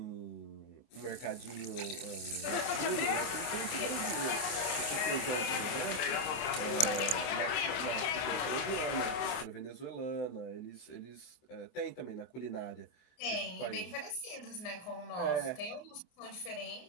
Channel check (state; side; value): late; right; 24 ms